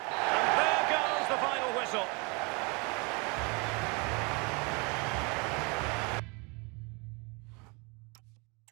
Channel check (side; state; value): left; quieter; 30.6 dB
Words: And there goes the final whistle.